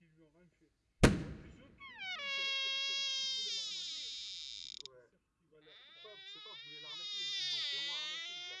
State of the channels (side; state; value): both; identical; correlation 1.00